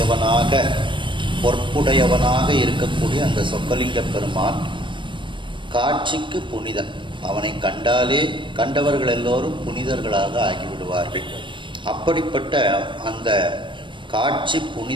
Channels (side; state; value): left; late; 0.24 ms